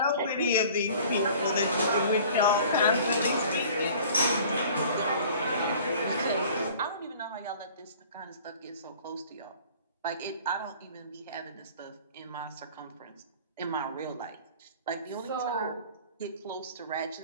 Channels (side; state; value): both; inverted; correlation -0.48